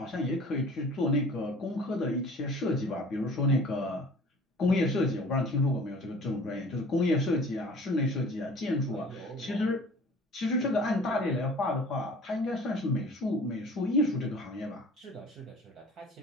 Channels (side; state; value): both; normal; correlation 0.47